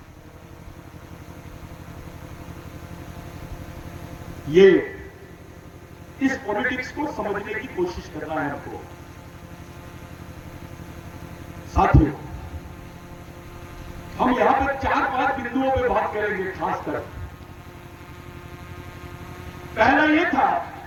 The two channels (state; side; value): identical; both; correlation 1.00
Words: ये इस पॉलिटिक्स को समझने की कोशिश करना है हमको। साथियों, हम यहां पर 4-5 बिंदुओं पे बात करेंगे खासकर। पहला यह था